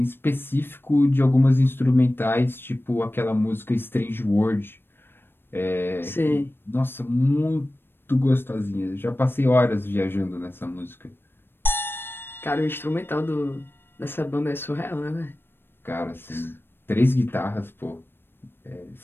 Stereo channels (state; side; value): late; right; 0.10 ms